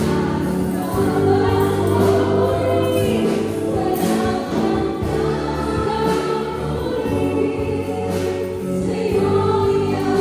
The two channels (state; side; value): identical; both; correlation 1.00